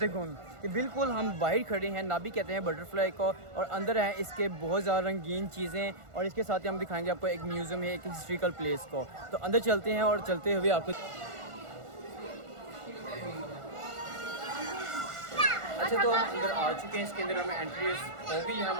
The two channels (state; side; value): late; left; 1.4 ms